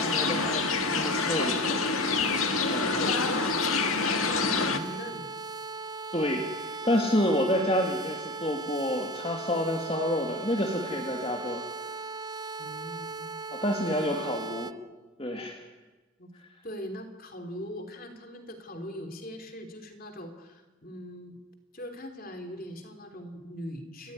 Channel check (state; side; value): normal; both; correlation 0.33